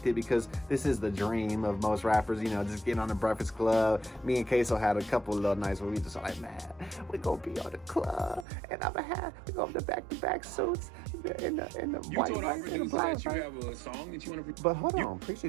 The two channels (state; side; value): drops out; left; at 8.5 s